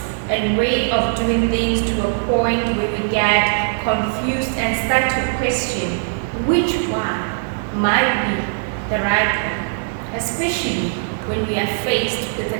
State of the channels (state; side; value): silent; left; digital silence